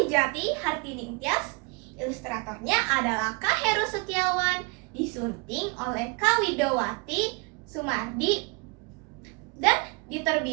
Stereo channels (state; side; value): quieter; left; 31.1 dB